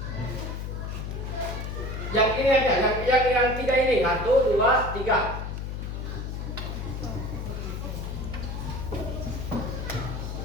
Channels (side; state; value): left; noise; hum, 5 dB below the sound